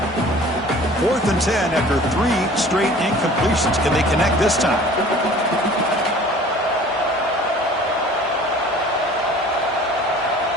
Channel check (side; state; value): both; normal; correlation 0.47